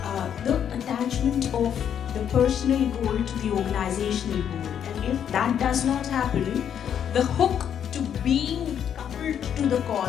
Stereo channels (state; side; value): quieter; right; 8.9 dB